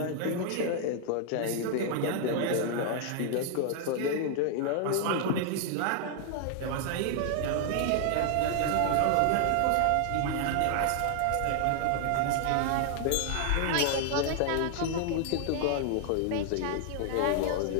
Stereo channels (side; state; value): both; different; correlation 0.00